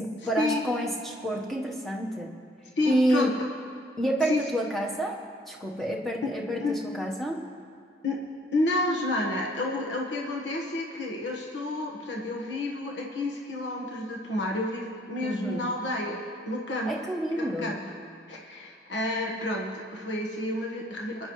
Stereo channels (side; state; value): both; normal; correlation 0.61